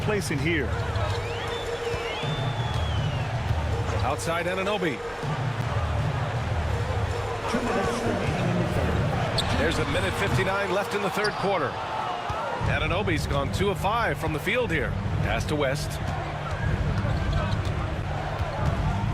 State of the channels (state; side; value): identical; both; correlation 1.00